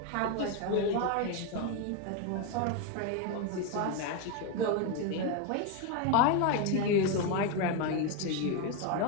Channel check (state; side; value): different; both; correlation 0.02